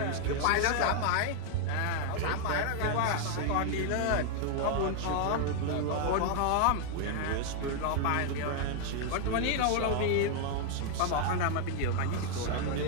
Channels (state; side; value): different; both; correlation 0.00